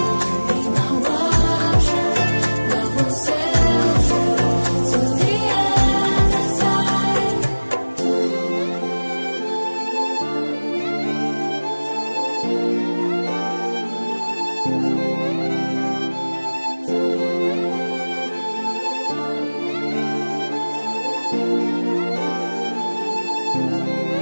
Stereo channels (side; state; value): both; inverted; correlation -1.00